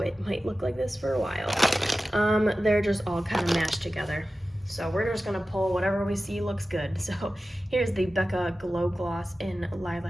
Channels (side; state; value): both; normal; correlation 0.95